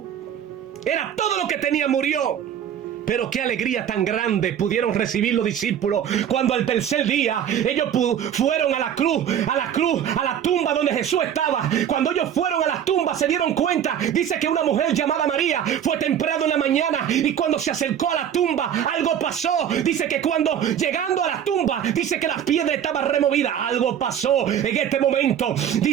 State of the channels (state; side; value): quieter; left; 9.3 dB